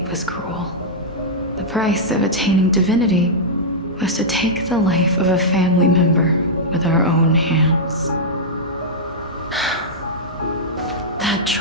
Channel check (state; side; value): normal; both; correlation -0.09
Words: was cruel. The price of attaining divinity was to take the life of a family member with our own hands. That